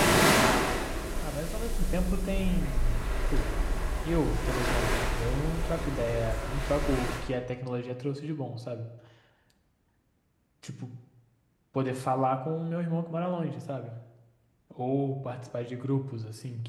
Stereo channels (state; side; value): identical; both; correlation 1.00